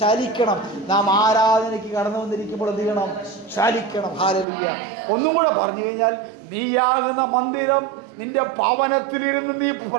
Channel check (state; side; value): drops out; left; at 4.5 s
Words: ചലിക്കണം. നാം ആരാധനയ്ക്ക് കടന്നു വന്നിരിക്കുമ്പോൾ എന്ത് ചെയ്യണം, ചലിക്കണം. ഹല്ലേലൂയ. ഒന്നും കൂടെ പറഞ്ഞു കഴിഞ്ഞാൽ, നീയാകുന്ന മന്ദിരം, നിന്റെ ഭവനത്തിലിരുന്ന് നീ